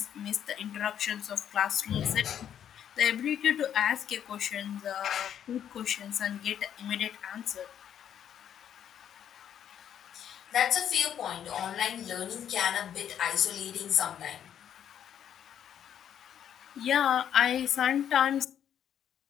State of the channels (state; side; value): quieter; right; 9.5 dB